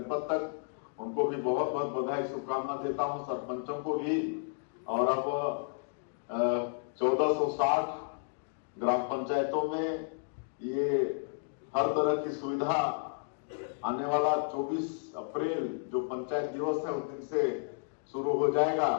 तक, उनको भी बहुत बहुत बधाई, शुभकामना देता हूं, सरपंचों को भी। और अब 1460 ग्राम पंचायतों में ये हर तरह की सुविधा आने वाला 24 अप्रैल जो पंचायत दिवस है उस दिन से शुरू हो जाएगा।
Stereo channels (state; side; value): silent; right; digital silence